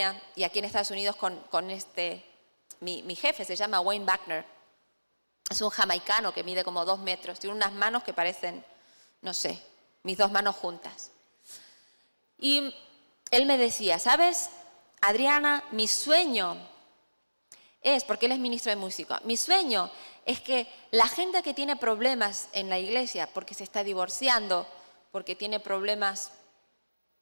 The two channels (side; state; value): both; inverted; correlation -1.00